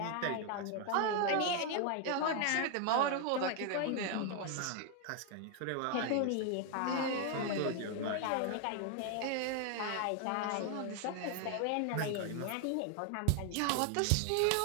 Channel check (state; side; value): different; both; correlation 0.01